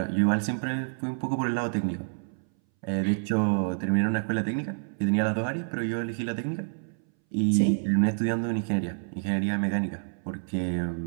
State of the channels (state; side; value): silent; left; 59 dB below the other